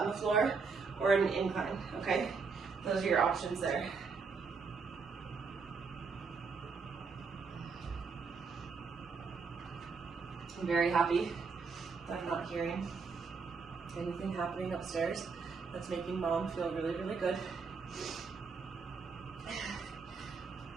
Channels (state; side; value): quieter; left; 5.0 dB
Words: the floor or an incline, okay? Those are your options there. I'm very happy that I'm not hearing anything happening upstairs. That's making mom feel really, really good.